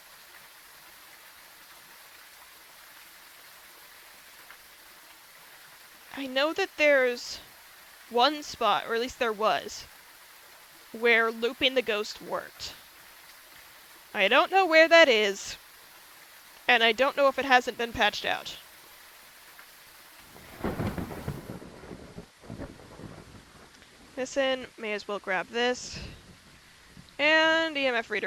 I know that there's one spot, or at least there was, where looping the ghost worked. I don't know where that is, and I don't know if it hasn't been patched out. Listen, may as well grab this. And EMF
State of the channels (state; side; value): identical; both; correlation 1.00